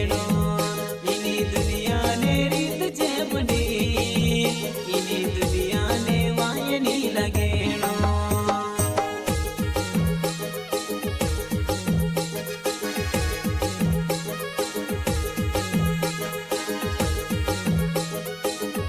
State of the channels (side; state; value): both; identical; correlation 1.00